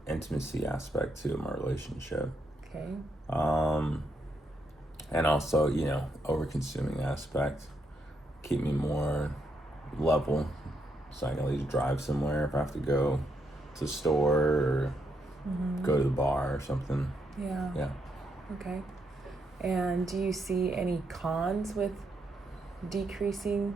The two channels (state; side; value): normal; both; correlation 0.79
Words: intimacy aspect too of my relationship. Okay. And also, over consuming aspect, keep me more level, so I can at least drive somewhere if I have to go to the store or go to the bar or something. Yeah. Yeah. Okay. And do you see any cons with